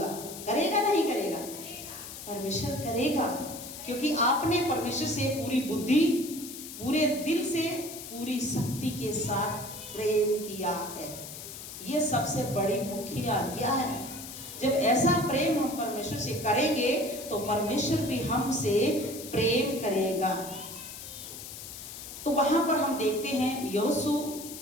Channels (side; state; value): left; noise; hiss, 11 dB below the sound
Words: करेगा नहीं करेगा? परमेश्वर करेगा, क्योंकि आपने परमेश्वर से पूरी बुद्धि, पूरे दिल से, पूरी शक्ति के साथ प्रेम किया है। ये सबसे बड़ी मुख्य आज्ञा है। जब ऐसा प्रेम हम परमेश्वर से करेंगे, तो परमेश्वर भी हमसे प्रेम करेगा। तो वहां पर हम देखते हैं योशू